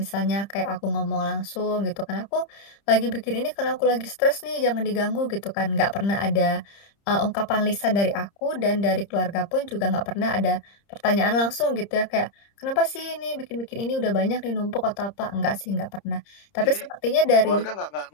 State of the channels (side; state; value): right; late; 30 ms